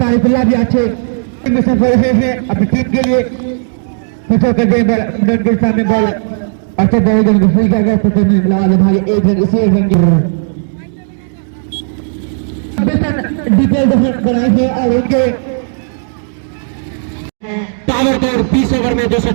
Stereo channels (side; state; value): left; silent; digital silence